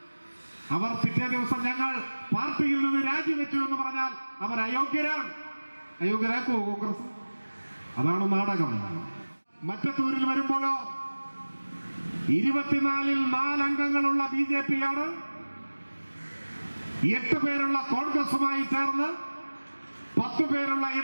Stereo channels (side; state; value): both; inverted; correlation -1.00